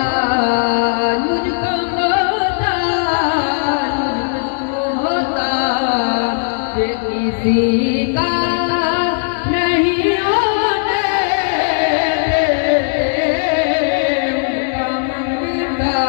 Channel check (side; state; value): right; silent; digital silence